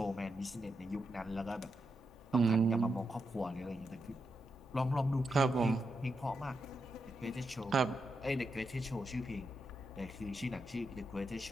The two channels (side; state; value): both; normal; correlation 0.85